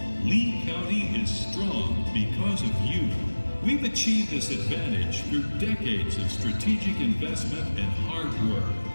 Lee County is strong because of you. We've achieved this advantage through decades of strategic investment and hard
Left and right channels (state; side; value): inverted; both; correlation -1.00